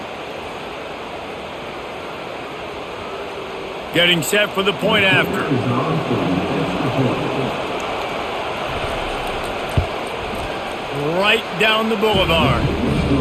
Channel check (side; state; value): both; identical; correlation 1.00